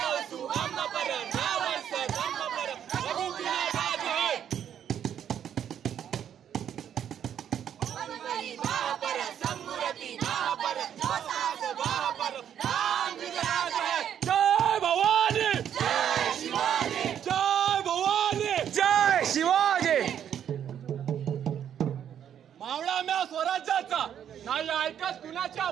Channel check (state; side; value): quieter; left; 9.4 dB